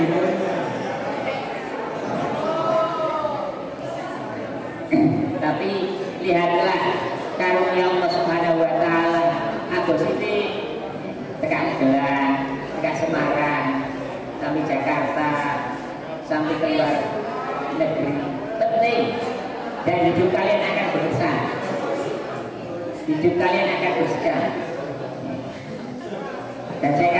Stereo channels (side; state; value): both; identical; correlation 1.00